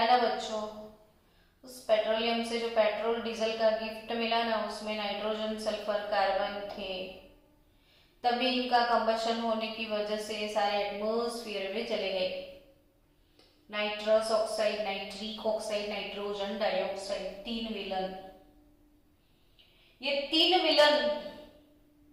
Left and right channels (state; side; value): identical; both; correlation 1.00